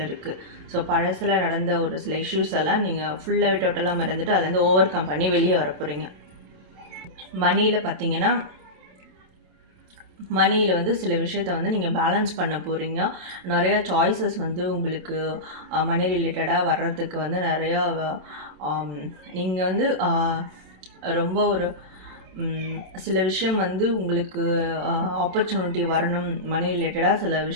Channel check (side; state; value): left; late; 27 ms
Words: இருக்குது. ஸோ பழசில் நடந்த ஒரு சில இஷ்யூஸ் எல்லாம் நீங்கள் ஃபுல்லாகவே டோட்டலாக மறந்துட்டு அதுலேருந்து ஓவர் கம் பண்ணி வெளியே வர போகிறீங்க. மணியில் பார்த்தீங்கன்னா மணியில் வந்து சில விஷயத்த வந்து நீங்கள் பேலன்ஸ் பண்ண போகிறீங்க. நிறையா சாய்ஸஸ் வந்து உங்களுக்கு மணி ரிலேட்டடாக வர்றதுக்கு வந்து நிறையா நீங்கள் வந்து ரொம்ப ஒரு சில விஷயம் வந்து உங்களுக்கு ஆப்பர்ச்சுனிட்டி வரணும். மணி ரிலேட்டடாக சில